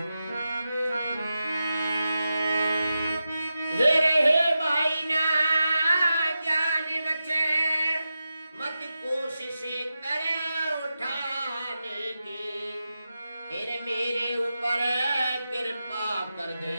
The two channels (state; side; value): inverted; both; correlation -0.91